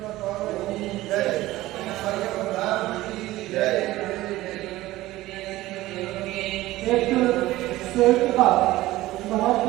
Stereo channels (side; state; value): left; quieter; 16.9 dB